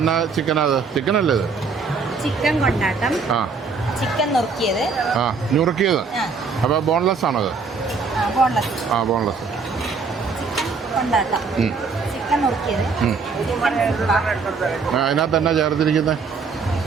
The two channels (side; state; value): left; quieter; 4.8 dB